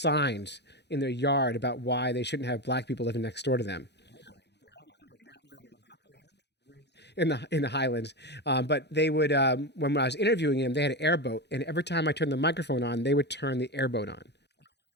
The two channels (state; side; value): late; right; 0.50 ms